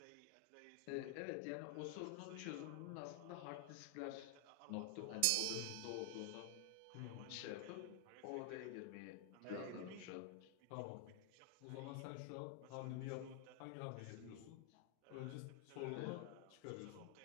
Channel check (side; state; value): both; different; correlation 0.00